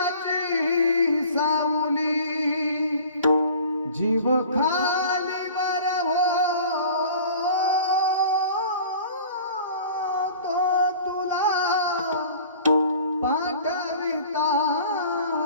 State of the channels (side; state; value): both; inverted; correlation -0.45